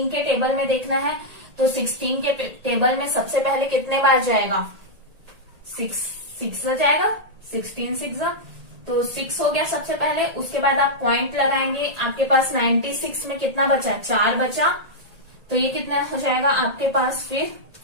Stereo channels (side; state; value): left; late; 1.8 ms